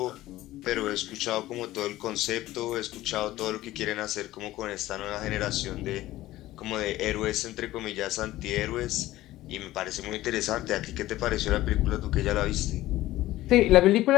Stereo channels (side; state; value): right; quieter; 16.0 dB